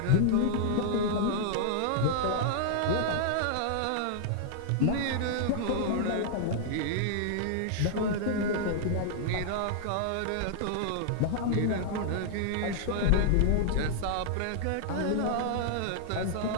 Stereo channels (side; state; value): both; different; correlation -0.01